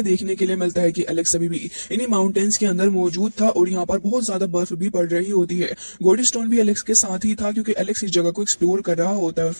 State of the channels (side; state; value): both; inverted; correlation -1.00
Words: देखने के लिए मिलता है कि एलेक्स अभी भी इन्हीं माउंटेन्स के अंदर मौजूद था और यहाँ पर बहुत ज्यादा बर्फ भी पड़ रही होती है। गोल्ड स्टोन भी एलेक्स के साथ ही था क्योंकि एलेक्स इस जगह को एक्सप्लोर कर रहा होता है और